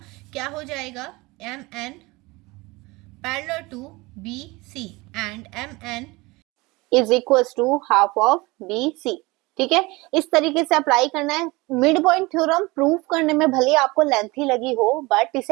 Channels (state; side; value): quieter; left; 23.2 dB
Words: क्या हो जाएगा, M N parallel to B C and M N is equal to half of B C. ठीक है, इस तरीके से अप्लाई करना है। मिड पॉइंट थ्योरम प्रूव करने में भले आपको लेंथी लगी हो, बट